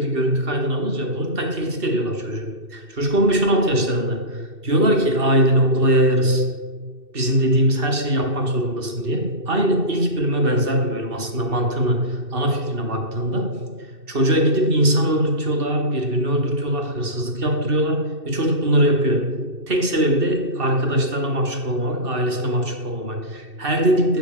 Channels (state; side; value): late; left; 2.6 ms